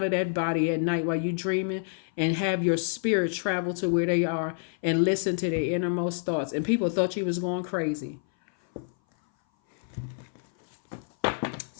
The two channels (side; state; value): right; silent; 58 dB below the other